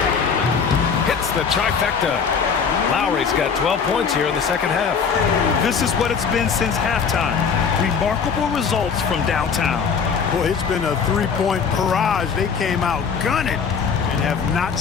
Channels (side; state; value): right; quieter; 6.2 dB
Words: Hits the trifecta. Lowry's got 12 points here in the second half. This is what it's been since halftime. Remarkable results from downtown. Boy, it's been a three-point barrage. They came out gunning and have not